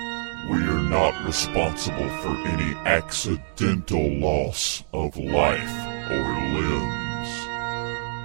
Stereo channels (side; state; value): left; silent; 61 dB below the other